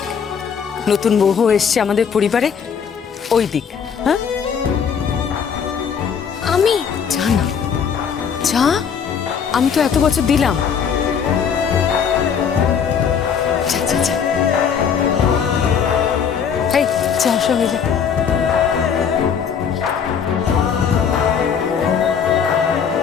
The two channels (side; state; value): right; quieter; 7.1 dB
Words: নতুন বউ এসছে আমাদের পরিবারে, ওই দিক। হ্যাঁ আমি যা না, যা, আমি তো এত বছর দিলাম। যা যা যা, এই যা সঙ্গে যা।